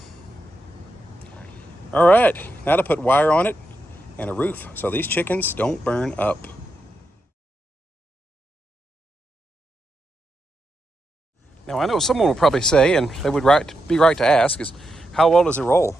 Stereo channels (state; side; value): normal; both; correlation 0.85